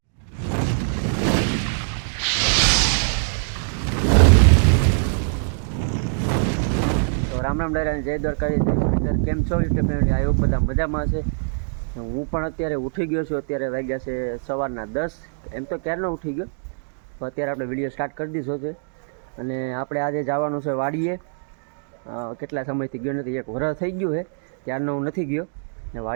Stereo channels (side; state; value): left; silent; digital silence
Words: રામ રામ ડાયરા, જય દ્વારકાધીશ. કેમ છો યુટ્યુબ ફેમિલી? આ બધા મજામાં છે. હું પણ અત્યારે ઉઠી ગયો છું. અત્યારે વાગ્યા છે સવારના 10. એમ તો ક્યારનો ઉઠી ગયો, તો અત્યારે આપણે વિડીયો સ્ટાર્ટ કરી દીધો છે. અને આપણે આજે જવાનું છે વાડીએ. કેટલા સમયથી ગયો નથી, 1 વર્ષ થઈ ગયું છે ત્યારનો હું નથી ગયો. ને